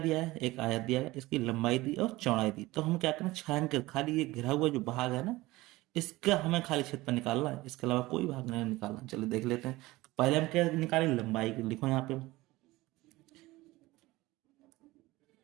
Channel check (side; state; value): left; quieter; 19.4 dB